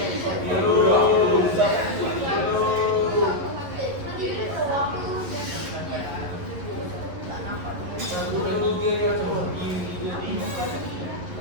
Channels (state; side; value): late; left; 11 ms